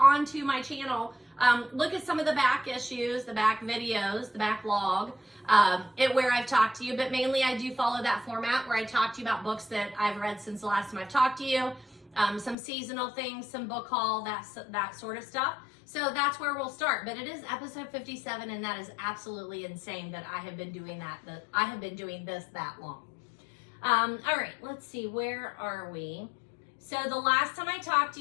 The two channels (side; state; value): right; drops out; at 12.6 s